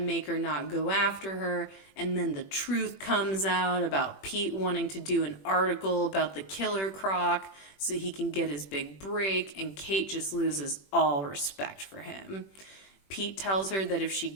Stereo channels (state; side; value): late; right; 21 ms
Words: make her not go after her. And then the truth comes out about Pete wanting to do an article about the killer croc so he can get his big break, and Kate just loses all respect for him. Pete tells her that if she